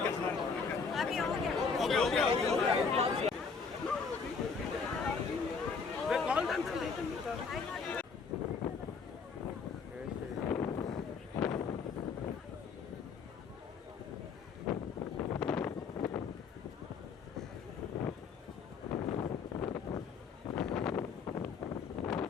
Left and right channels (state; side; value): quieter; right; 5.4 dB